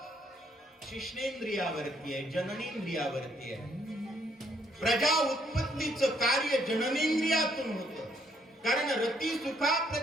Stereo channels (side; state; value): both; normal; correlation 0.69